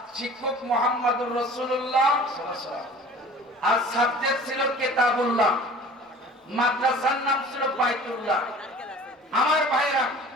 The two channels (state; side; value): normal; both; correlation 0.45